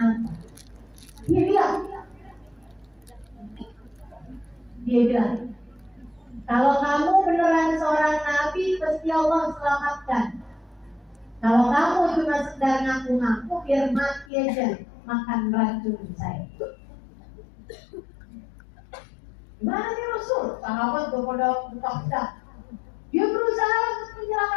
Dia bilang, kalau kamu beneran seorang Nabi, pasti Allah selamatkan. Kalau kamu cuma sekedar ngaku-ngaku, biar mati aja makan racun saya. Gimana nih Rasul? Sahabat udah pada buka-buka. Dia berusaha untuk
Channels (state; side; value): drops out; right; at 14.3 s